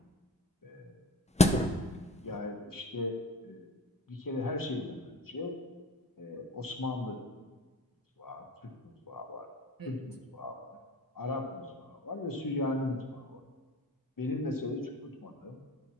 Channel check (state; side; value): normal; both; correlation 0.40